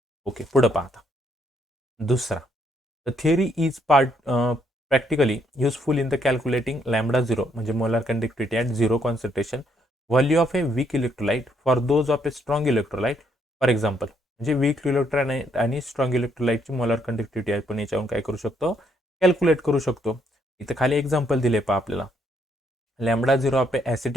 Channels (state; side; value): normal; both; correlation 0.72